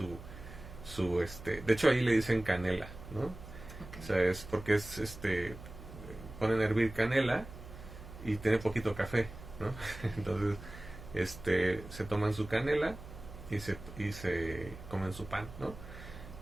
de hecho ahí le dicen canela, ¿no? Okay. O sea, es porque ponen a hervir canela y tiene poquito café, ¿no? Entonces se toman su canela y se comen su pan, ¿no?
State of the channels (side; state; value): right; noise; hum, 14 dB below the sound